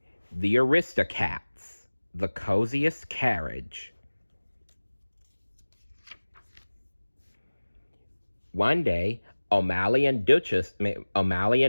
The Aristocats. The Coziest Carriage. One day, O'Malley and Duchess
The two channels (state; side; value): inverted; both; correlation -1.00